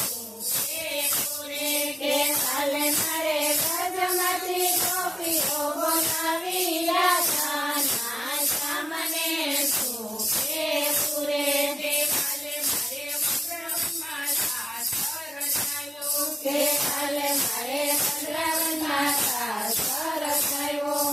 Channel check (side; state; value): both; normal; correlation 0.96